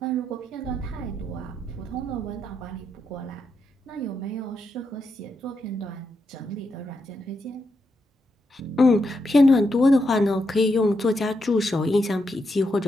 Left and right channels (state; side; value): normal; both; correlation 0.83